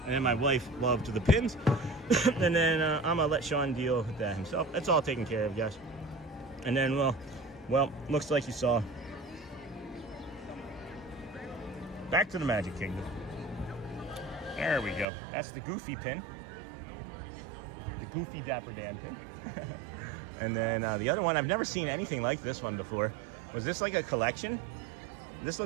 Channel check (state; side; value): drops out; left; at 15.1 s